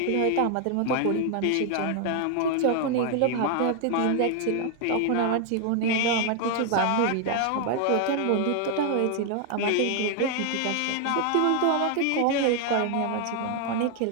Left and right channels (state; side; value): different; both; correlation 0.00